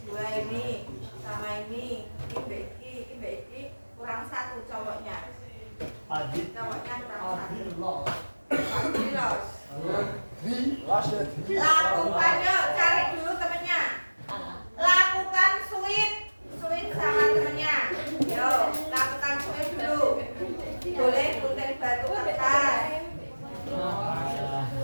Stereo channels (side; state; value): both; inverted; correlation -1.00